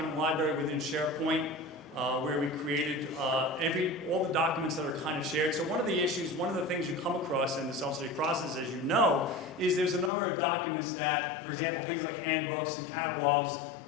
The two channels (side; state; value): right; drops out; at 10.1 s